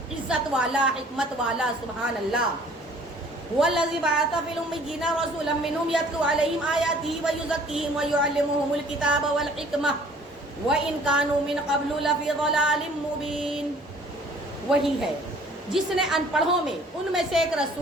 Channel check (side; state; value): both; normal; correlation 0.54